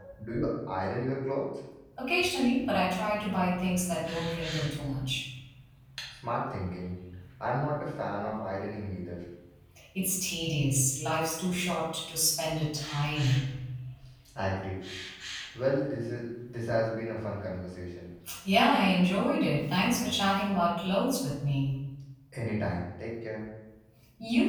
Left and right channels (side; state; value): both; identical; correlation 1.00